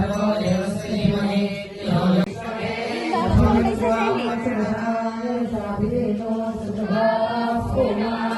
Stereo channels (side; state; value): both; identical; correlation 1.00